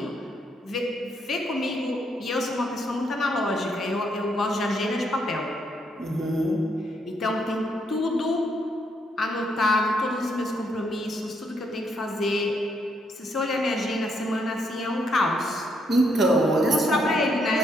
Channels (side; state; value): both; normal; correlation 0.74